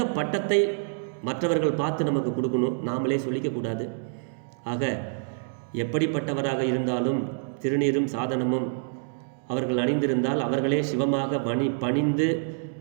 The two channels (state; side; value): silent; left; digital silence